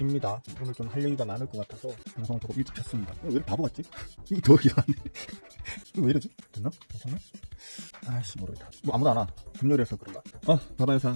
오늘 좀 할 얘기가 많을 것 같아서 방송을 조금 일찍 켰습니다. 왜 이렇게 바보 같지? 이게 더 이상하네. 이거 왜 이러지? 됐나? 괜찮나? 아이씨 모르겠다. 뭐 아무도 안 와. 금요일에서 그런가? 바바회사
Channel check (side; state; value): both; inverted; correlation -1.00